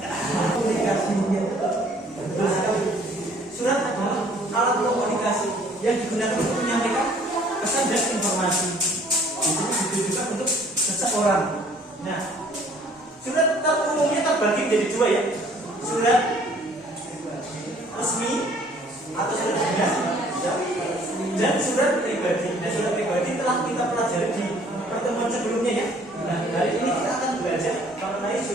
Komunikasi. Surat adalah alat komunikasi yang digunakan untuk menyampaikan pesan dan informasi. Itu ditujukan untuk seseorang. Nah, surat umumnya terbagi menjadi dua ya. Surat resmi atau surat dinas dan surat pribadi. Nah, surat pribadi telah kita pelajari di pertemuan sebelumnya ya. Nah, hari ini kita akan belajar mengenai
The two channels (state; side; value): normal; both; correlation 0.57